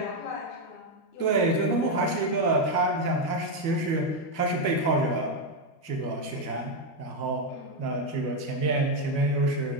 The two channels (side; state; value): right; late; 12 ms